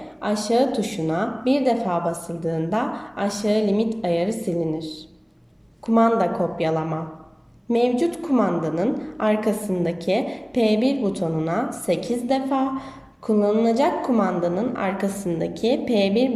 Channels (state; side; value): identical; both; correlation 1.00